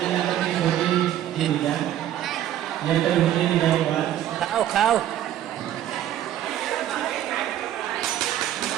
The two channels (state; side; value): quieter; left; 11.9 dB